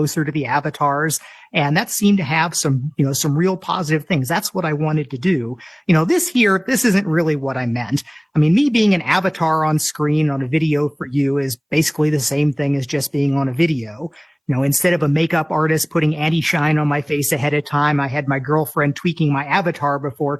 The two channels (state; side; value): identical; both; correlation 1.00